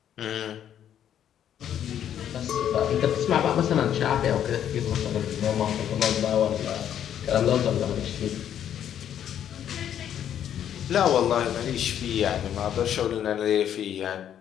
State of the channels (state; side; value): quieter; right; 9.9 dB